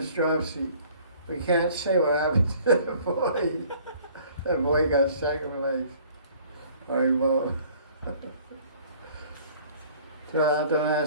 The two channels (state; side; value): inverted; both; correlation -0.54